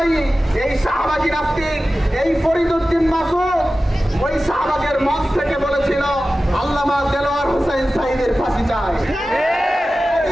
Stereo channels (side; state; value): both; normal; correlation 0.95